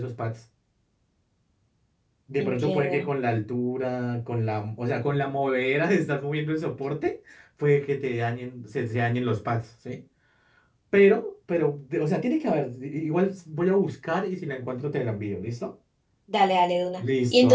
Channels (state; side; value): identical; both; correlation 1.00